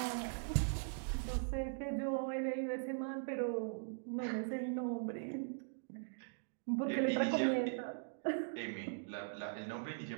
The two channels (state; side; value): silent; left; digital silence